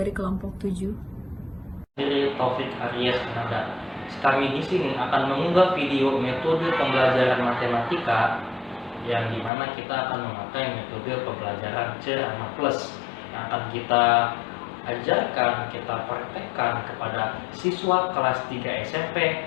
kelompok 7. Dari Taufik Aryas Ananda. Kami di sini akan mengunggah video metode pembelajaran matematika yang dimana kita akan memakai metode pembelajaran Cerama Plus yang akan kita ajarkan, kita praktekkan kepada siswa kelas 3 SMP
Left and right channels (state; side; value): drops out; right; at 9.5 s